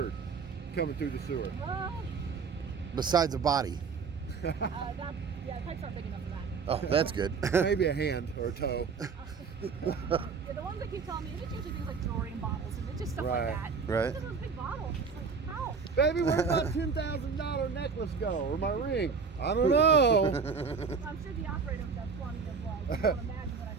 coming through the sewer? Besides a body. That, yeah, pipes aren't big enough for that. Oh, that's good. Maybe a hand or a toe. Yeah, the ones that keep telling me, it's usually things like jewelry and bottles, and it's just stuff Right. like that. Right. Look at those big bottles. It's like, how? Baby, where'd my $10,000 necklace go? Or my ring? I don't know. I'm sure the operators have plenty of like, you don't imagine what I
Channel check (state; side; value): quieter; left; 5.4 dB